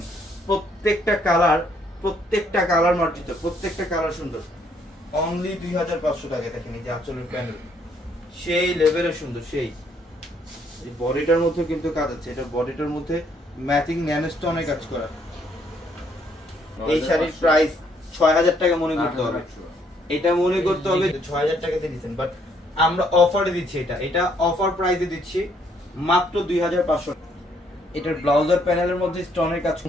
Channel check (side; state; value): both; normal; correlation 0.69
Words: প্রত্যেকটা কালার মার্জিত, প্রত্যেকটা কালার সুন্দর। অনলি 2500 টাকা। দেখেন এই যে আঁচলের প্যানেল সেই লেভেলে সুন্দর, সেই বডিটার মধ্যে কিন্তু কাজ আছে, এটা বডিটার মধ্যে ম্যাচিং ন্যানো স্টোনে কাজ করা। এই শাড়ির প্রাইস 6000 টাকা মনে করতে হবে, এটা মনে করতে হবে 6000 টাকাতে দিচ্ছেন, বাট আমরা অফারে দিচ্ছি, এটা অফার প্রাইসে দিচ্ছি মাত্র 2500। এটার ব্লাউজার প্যানেলের মধ্যে স্টোনের কাজ